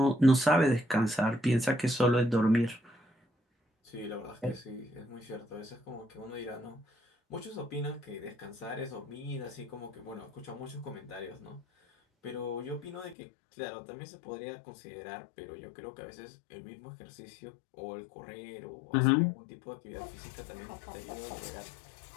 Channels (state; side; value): drops out; right; at 13.2 s